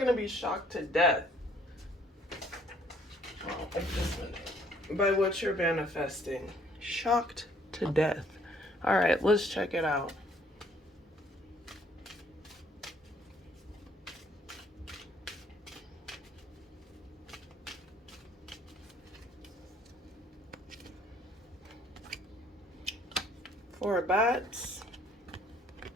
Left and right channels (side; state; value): both; normal; correlation 0.62